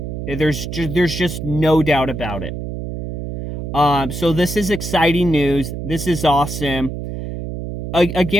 There's just no doubt about it. So this is exciting news. This is awesome.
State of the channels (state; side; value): noise; right; hum, 6 dB below the sound